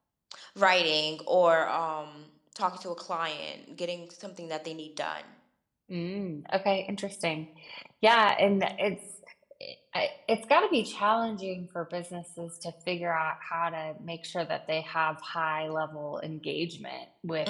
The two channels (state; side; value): identical; both; correlation 1.00